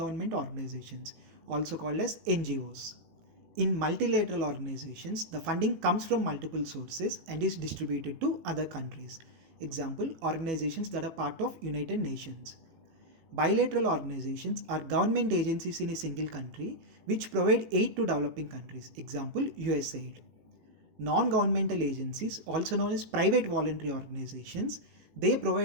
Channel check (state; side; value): late; left; 18 ms